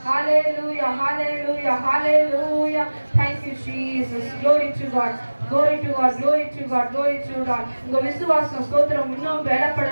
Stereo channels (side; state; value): both; inverted; correlation -1.00